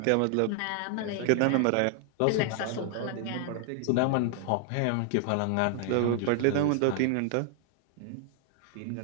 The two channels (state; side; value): different; both; correlation 0.00